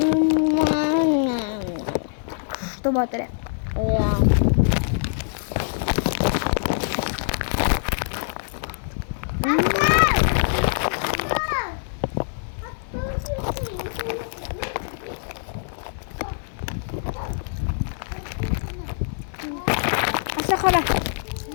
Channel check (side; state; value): right; silent; 63 dB below the other